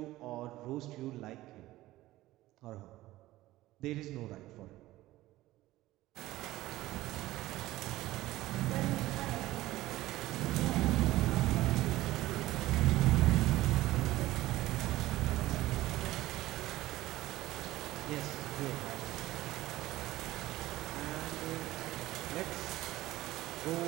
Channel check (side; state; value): left; quieter; 16.7 dB